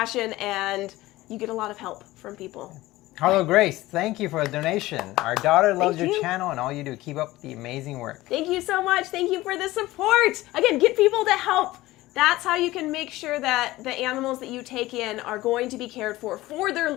and you get a lot of help from people. Hello, Grace. Thank you for the donation. Our daughter loves Thank your you. channel and all you do. Keep up the amazing work. Thank you so much. Thank you for the support. Again, get people to help. That's how you can make sure that the animals that you take in are going to be cared for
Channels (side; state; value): right; quieter; 17.9 dB